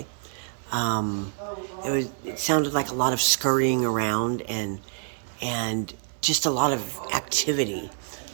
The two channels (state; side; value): silent; left; 60 dB below the other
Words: It sounded like a lot of scurrying around and just a lot of activity.